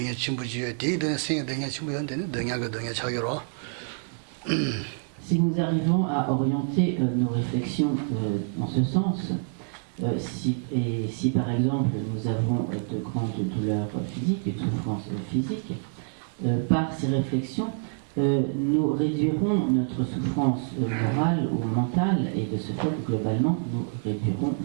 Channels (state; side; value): silent; left; 60 dB below the other